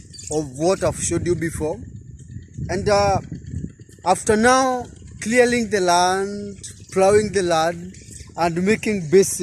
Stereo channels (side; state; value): both; identical; correlation 1.00